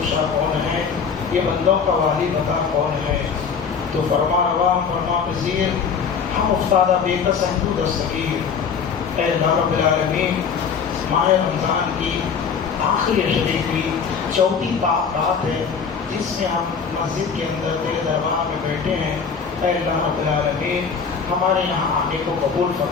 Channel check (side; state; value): right; quieter; 6.2 dB